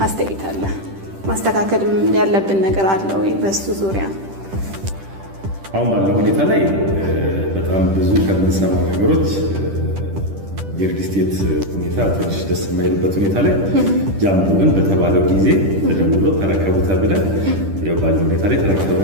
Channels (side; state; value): left; late; 10 ms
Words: አስተያየት አለ ማስተካከል ያለብን ነገር አለ ወይ በሱ ዙሪያ? አሁን ባለው ሁኔታ ላይ በጣም ብዙ ከምንሰማው ነገሮች የሪል ስቴት ሁኔታ ትንሽ ደስ የማይልበት ሁኔታ ላይ ጃምቦ ግን በተባለው ጊዜ ተደውሎ ተረከቡታል ብለን ያው ባለው ሁኔታ ላይ